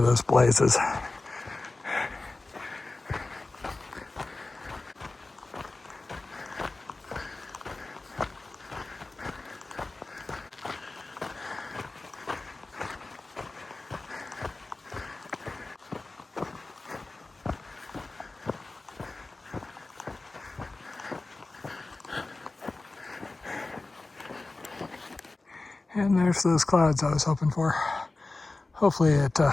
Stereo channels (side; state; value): right; quieter; 3.3 dB